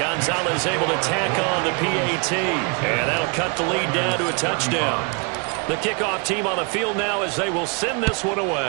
able to tack on the PAT. And that'll cut the lead down to a touchdown. The kickoff team on the field now as they will send this one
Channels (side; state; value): left; quieter; 33.0 dB